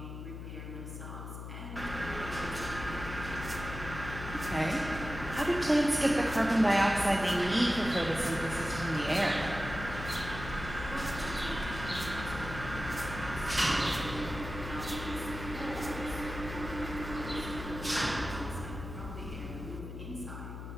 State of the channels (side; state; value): left; noise; hum, 9 dB below the sound